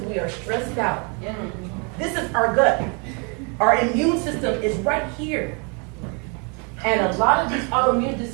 we are stressed out. This is our gut. Our immune system is right here. And a lot of these autoimmune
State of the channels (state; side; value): quieter; left; 34.7 dB